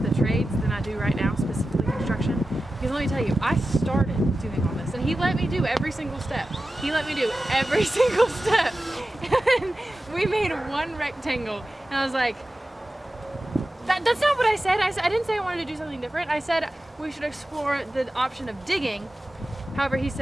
trades than I do right now, specifically construction. Because let me tell you, I started doing all this and he let me do every single step. He let me do every single step. And we made one rectangle and I was like, that's not what I said. I didn't say I wanted to do something different. I said we should explore the option of digging. However, he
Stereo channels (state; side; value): normal; both; correlation 0.94